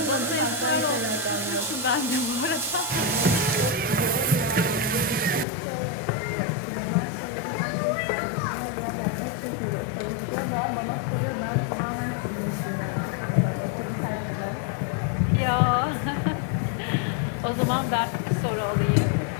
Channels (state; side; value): drops out; right; at 5.5 s